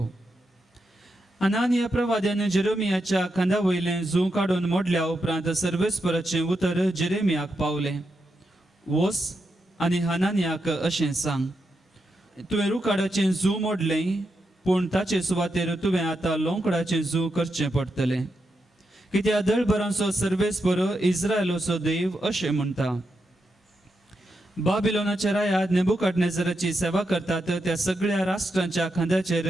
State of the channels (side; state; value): both; normal; correlation 0.85